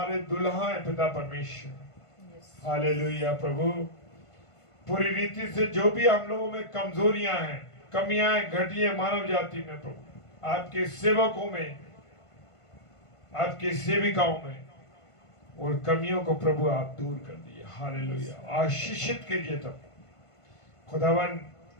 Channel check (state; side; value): late; right; 1.5 ms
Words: दुल्हा हैं पिता परमेश्वर। हालेलुया प्रभु, पूरी रीति से जो भी हम लोगों में कमजोरियां हैं, कमियां हैं, घटियां मानव जाति में प्रभु, आपके सेवकों में, आपकी सेविकाओं में, और कमियों को प्रभु आप दूर कर दिए। हालेलुया, आशीषित कीजिए। तब खुदावन